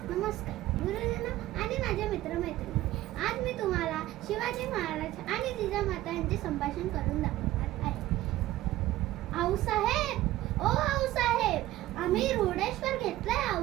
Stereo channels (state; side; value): quieter; left; 15.6 dB